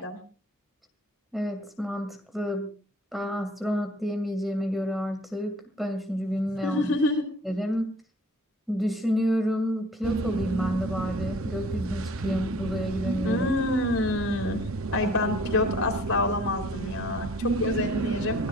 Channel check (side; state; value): both; normal; correlation 0.52